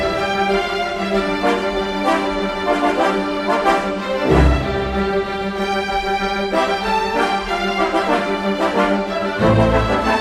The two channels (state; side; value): identical; both; correlation 1.00